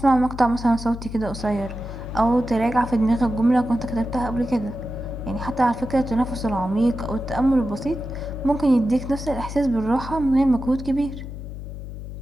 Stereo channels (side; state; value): left; noise; hum, 9 dB below the sound